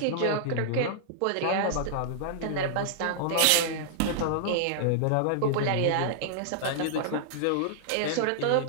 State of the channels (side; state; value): both; different; correlation -0.01